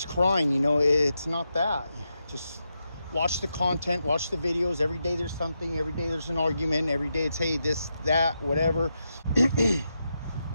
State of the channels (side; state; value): both; inverted; correlation -0.86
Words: crying? You know, it's not that. Just watch the content, watch the videos. Every day there's something. Every day there's an argument. Every day it's, hey, this, that, whatever.